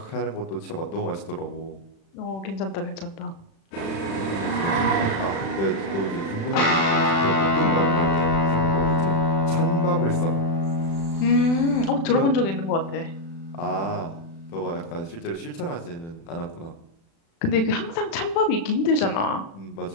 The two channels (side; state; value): right; late; 36 ms